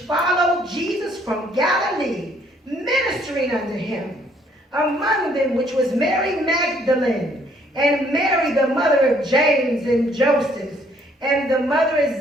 Jesus from Galilee, ministering unto him. Among them which was Mary Magdalene, and Mary the mother of James and Joseph, and the mother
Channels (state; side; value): normal; both; correlation 0.65